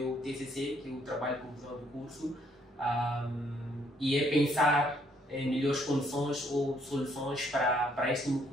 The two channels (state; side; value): normal; both; correlation 0.68